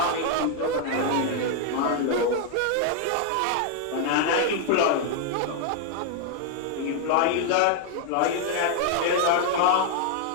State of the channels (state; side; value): different; both; correlation 0.00